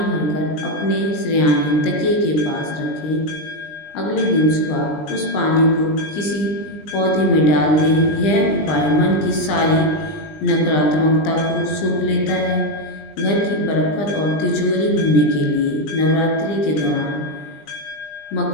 भरकर अपने शय्याने तकिए के पास रखें। अगले दिन सुबह उस पानी को किसी पौधे में डाल दें। यह उपाय मन की सारी नकारात्मकता को सोख लेता है। घर की बरकत और तिजोरी भरने के लिए नवरात्रि के दौरान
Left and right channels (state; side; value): late; right; 20 ms